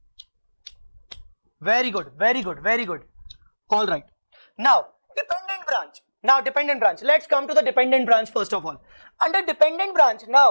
Very good, very good, very good. All right. Now, dependent branch. Now, dependent branch. Let's come to the dependent branch first of all. Under dependent branch,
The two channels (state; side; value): inverted; both; correlation -1.00